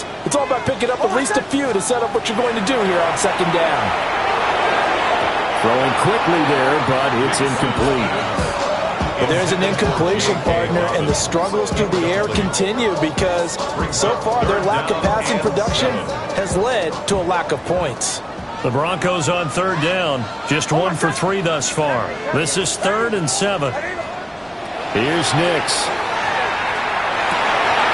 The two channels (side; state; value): both; identical; correlation 1.00